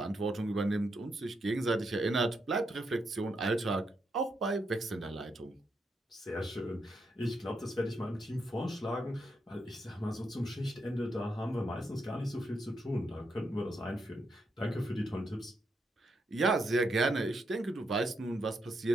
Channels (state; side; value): normal; both; correlation 0.81